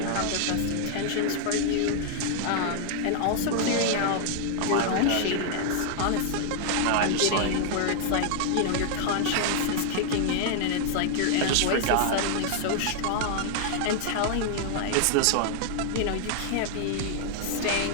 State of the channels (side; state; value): both; different; correlation -0.01